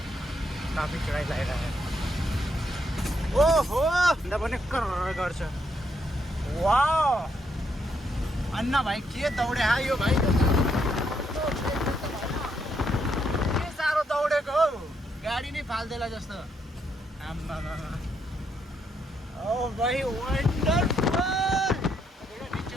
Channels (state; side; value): normal; both; correlation 0.76